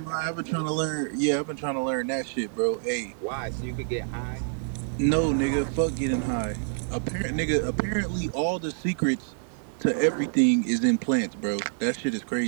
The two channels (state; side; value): silent; left; digital silence